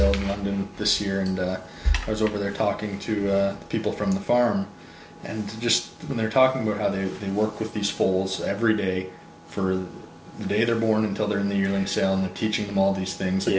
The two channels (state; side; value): identical; both; correlation 1.00